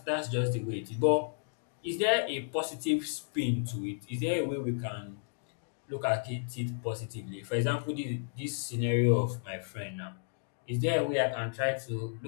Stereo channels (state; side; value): silent; right; digital silence